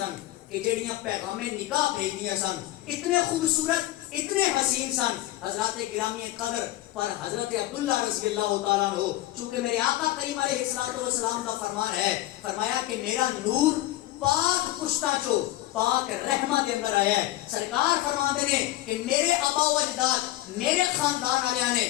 کہ جڑیاں پیغام نکاح بھیجدیاں سن. اتنے خوبصورت اتنے حسین سن حضرات گرامی قدر. پر حضرت عبداللہ رضی اللہ تعالیٰ عنہ چونکہ میرے آقا کریم علیہ السلام کا فرمان ہے فرمایا کہ میرا نور پاک پشتا چو پاک رحمہ دے اندر آیا ہے. سرکار فرماندے نے کہ میرے آبا و اجداد میرے خاندان والے نے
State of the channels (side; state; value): right; quieter; 16.3 dB